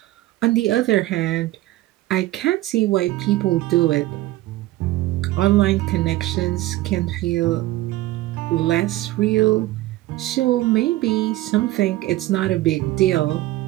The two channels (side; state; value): left; quieter; 16.7 dB